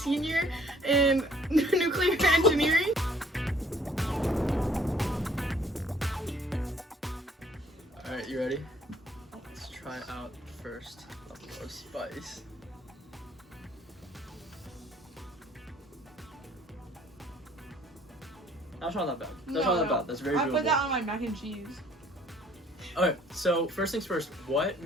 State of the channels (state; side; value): normal; both; correlation 0.60